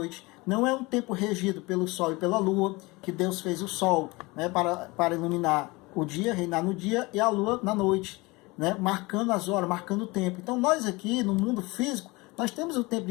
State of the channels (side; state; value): right; quieter; 23.7 dB